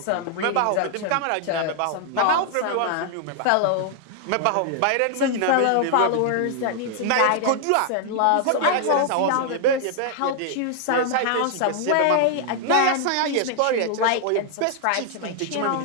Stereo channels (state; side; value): different; both; correlation 0.00